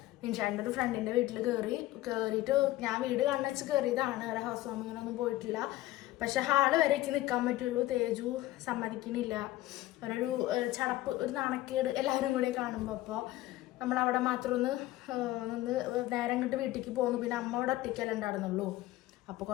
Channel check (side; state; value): right; quieter; 16.6 dB